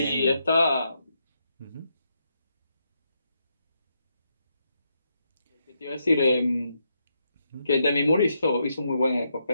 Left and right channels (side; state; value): both; inverted; correlation -0.80